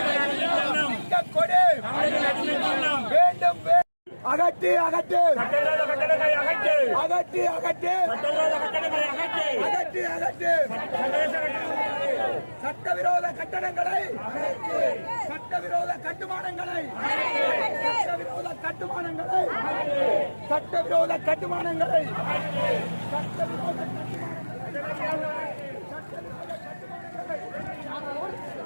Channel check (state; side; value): inverted; both; correlation -1.00